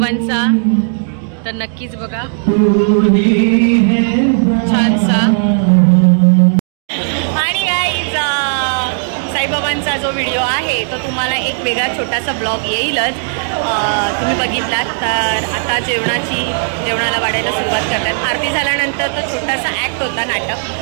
तर नक्कीच बघा छानसा. आणि गाईज साईबाबांचा जो व्हिडिओ आहे तो तुम्हाला एक वेगळा छोटासा ब्लॉग येईलच. तुम्ही बघितलात तर आता जेवणाला वाढायला सुरुवात करतात. आरती झाल्यानंतर तो छोटासा ॲक्ट होता, नाटक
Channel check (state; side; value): silent; left; digital silence